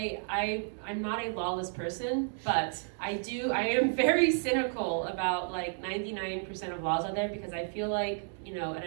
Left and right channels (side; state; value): left; silent; 57 dB below the other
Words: not a lawless person, but I am very cynical about like 99% of laws out there, because I feel like, you know, and